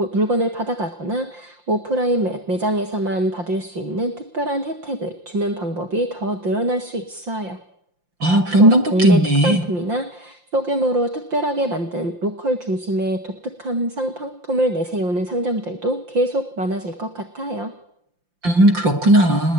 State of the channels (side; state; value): left; late; 5.7 ms